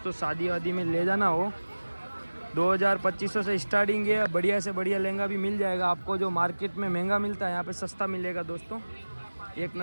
शादी वादी में ले जाना हो 2200 से स्टार्टिंग है। बढ़िया से बढ़िया लहंगा भी मिल जाएगा आपको। जो मार्केट में महंगा मिलता है यहाँ पे सस्ता मिलेगा दोस्तों, एक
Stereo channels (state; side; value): inverted; both; correlation -1.00